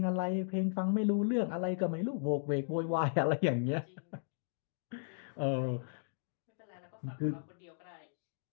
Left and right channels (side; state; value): right; silent; digital silence